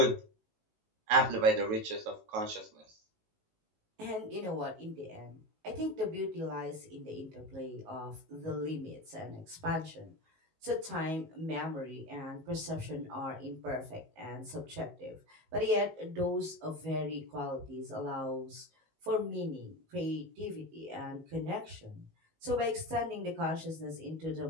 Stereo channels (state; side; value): late; left; 19 ms